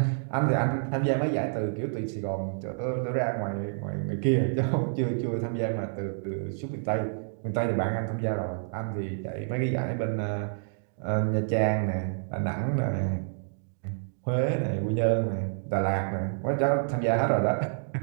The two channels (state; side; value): silent; left; digital silence